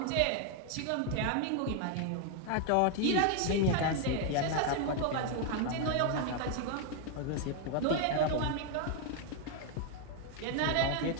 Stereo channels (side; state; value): both; different; correlation 0.00